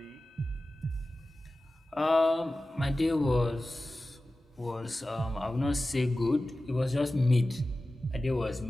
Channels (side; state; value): both; normal; correlation 0.95